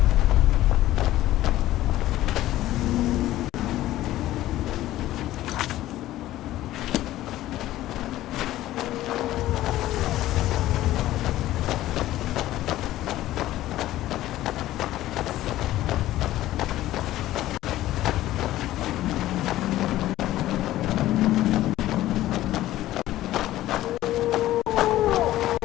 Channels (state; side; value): quieter; right; 14.9 dB